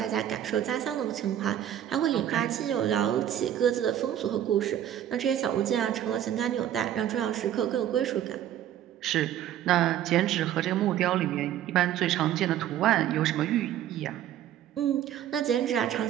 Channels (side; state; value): left; quieter; 11.1 dB